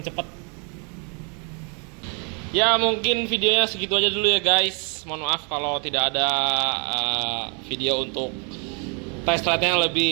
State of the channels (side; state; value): left; quieter; 37.0 dB